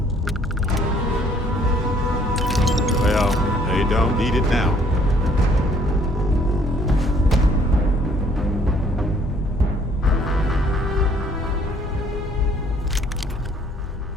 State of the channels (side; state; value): both; normal; correlation 0.61